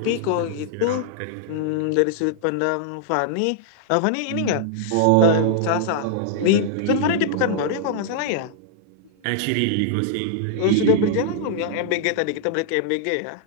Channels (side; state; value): both; different; correlation -0.01